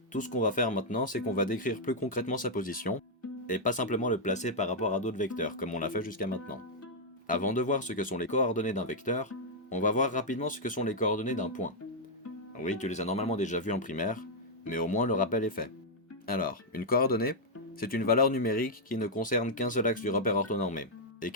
Tout ce qu'on va faire maintenant, c'est qu'on va décrire plus concrètement sa position, et pas simplement le placer par rapport à d'autres vecteurs, comme on l'a fait jusqu'à maintenant. Avant de voir ce que sont les coordonnées d'un vecteur, on va voir rapidement ce que sont les coordonnées d'un point. Oui, tu les as normalement déjà vues en primaire, mais au moins le rappel est fait. Alors, une coordonnée, c'est une valeur numérique qui ne concerne qu'un seul axe du repère orthonormé, et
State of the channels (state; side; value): normal; both; correlation -0.03